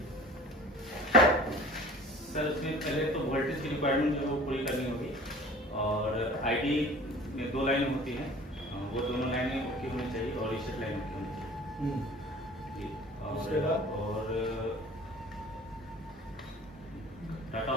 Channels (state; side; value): normal; both; correlation 0.45